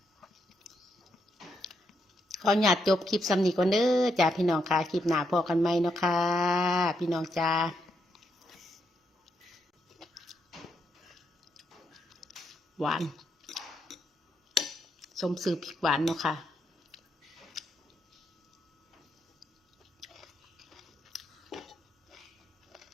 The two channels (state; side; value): normal; both; correlation 0.79